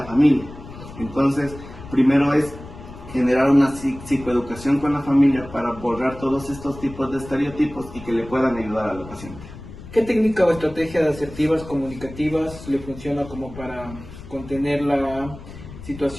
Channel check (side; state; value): left; noise; rumble, 15 dB below the sound